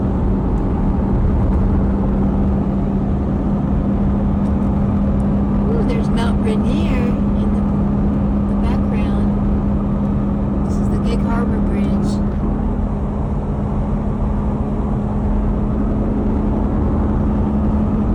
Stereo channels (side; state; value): both; identical; correlation 1.00